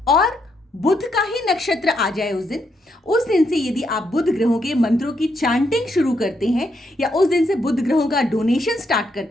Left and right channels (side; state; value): both; normal; correlation 0.78